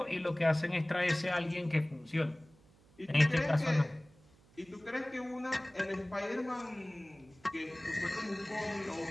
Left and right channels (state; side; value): noise; right; hum, 28 dB below the sound